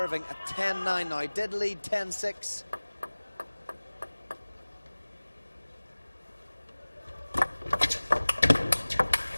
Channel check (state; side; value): inverted; both; correlation -1.00